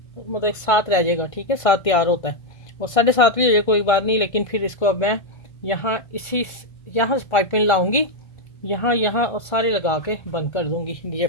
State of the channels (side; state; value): right; late; 1.5 ms